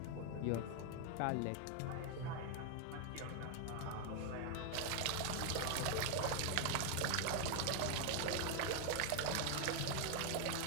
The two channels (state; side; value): different; both; correlation 0.00